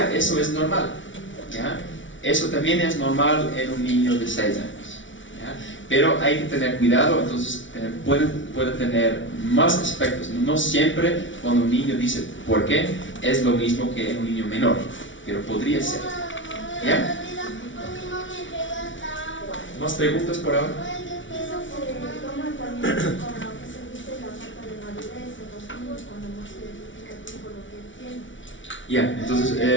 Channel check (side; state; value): right; late; 0.56 ms